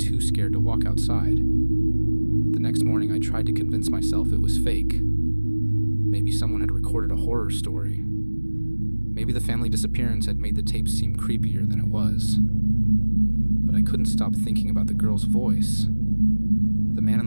scared to walk outside. The next morning, I tried to convince myself it was fake. Maybe someone had recorded a horror story. Maybe the family disappearance had made the tape seem creepier than it was. But I couldn't stop thinking about the girl's voice, the man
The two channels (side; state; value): both; inverted; correlation -1.00